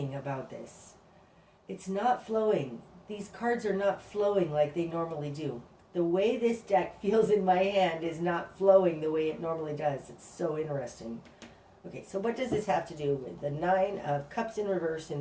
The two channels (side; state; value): both; identical; correlation 1.00